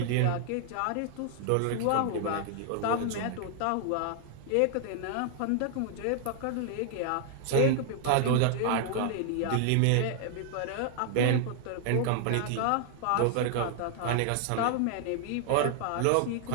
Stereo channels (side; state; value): both; different; correlation 0.00